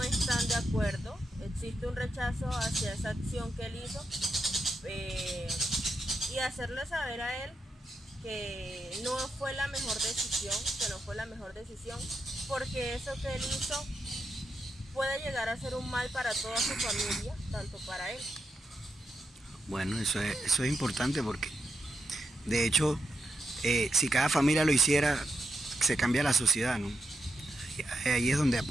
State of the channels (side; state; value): both; normal; correlation 0.85